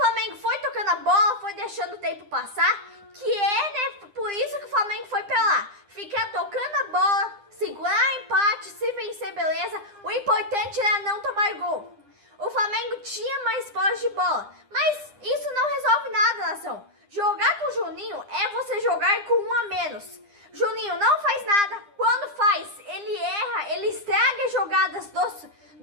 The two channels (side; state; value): left; late; 9.9 ms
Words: foi tocando a bola, foi deixando o tempo passar, que é, né, por isso que o Flamengo foi pra lá. Ficar tocando a bola, segurar empate, se vencer, beleza. O importante era não tomar gol. O Flamengo tinha mais posse de bola, mas isso não resolve nada, nação. Jogar com o Juninho é você jogar com um a menos. Juninho não faz nada, quando faz, ele erra, ele estraga as jogadas